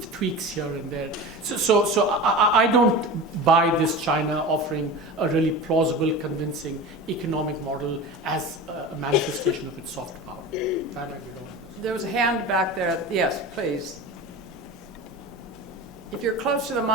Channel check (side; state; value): both; normal; correlation 0.31